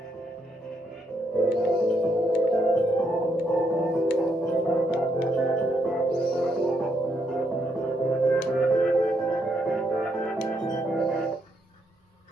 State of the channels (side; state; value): both; normal; correlation 0.76